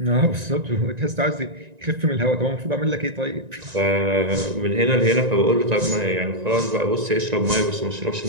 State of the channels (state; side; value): late; left; 1.9 ms